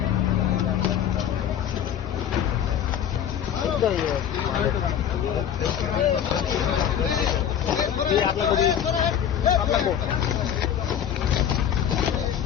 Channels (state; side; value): quieter; right; 9.3 dB